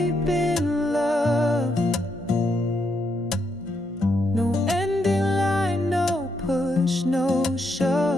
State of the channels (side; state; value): both; normal; correlation 0.79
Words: in love. No ending line, no push, no